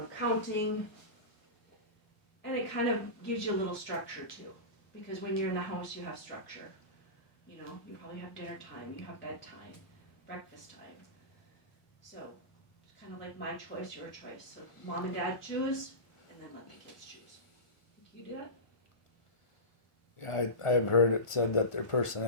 counting, and it kind of gives you a little structure too. Because when you're in the house, you have structure. You know, you probably have dinner time, you have bedtime, breakfast time. So, it's kind of like my choice, your choice. So, mom and dad choose, and then let the kids choose. Do you do that? Yeah, I've heard it said that their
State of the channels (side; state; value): right; late; 1.0 ms